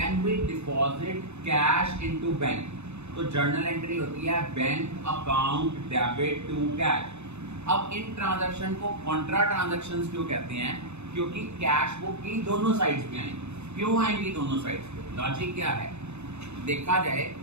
we deposit cash into bank, तो journal entry होती है bank account debit to cash. अब इन transaction को contra transactions क्यों कहते हैं? क्योंकि कैश बुक की दोनों साइड्स पे आएंगी. क्यों आएंगी दोनों साइड्स पे? लॉजिक क्या है? देखा जाए,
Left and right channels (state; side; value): late; left; 0.81 ms